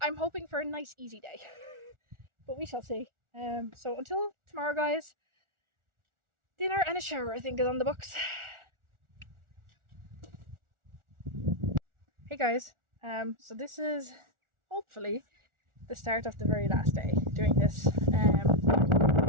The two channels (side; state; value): left; late; 1.4 ms